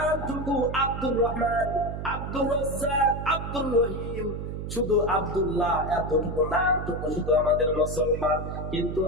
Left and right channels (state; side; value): noise; right; hum, 6 dB below the sound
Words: আব্দুর রহমান, আব্দুর রাজ্জাক, আব্দুর রহিম, শুধু আব্দুল্লাহ, এতটুকু নামটুকু শুধু আমাদের মুসলমান। কিন্তু